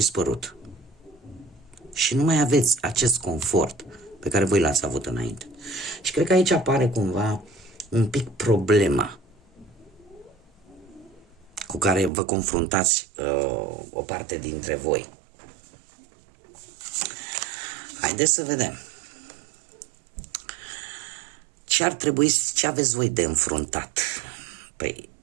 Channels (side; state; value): left; drops out; at 12.1 s